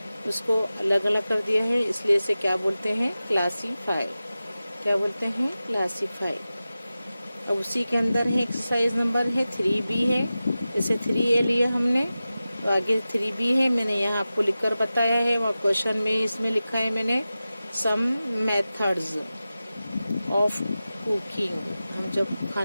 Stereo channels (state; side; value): inverted; both; correlation -0.95